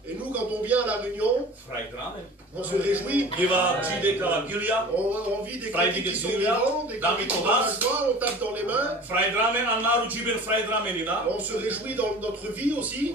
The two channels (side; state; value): both; normal; correlation 0.41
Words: Et nous, quand on vient à la réunion, on se réjouit. On vit des critiques qui sont vivants, des critiques qui sont la joie, on tape dans les mains. On se réjouit dans notre vie aussi.